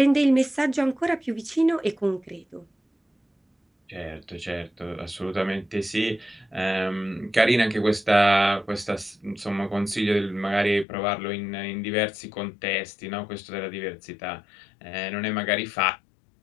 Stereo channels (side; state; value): right; drops out; at 10.9 s